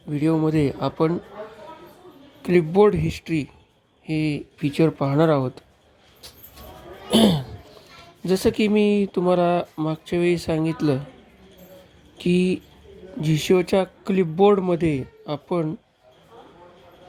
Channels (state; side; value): identical; both; correlation 1.00